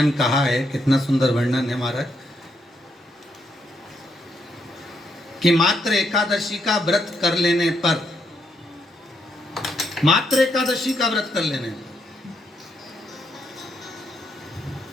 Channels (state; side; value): normal; both; correlation 0.78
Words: कहा है, कितना सुंदर वर्णन है महाराज कि मात्र एकादशी का व्रत कर लेने पर, मात्र एकादशी का व्रत कर लेने पर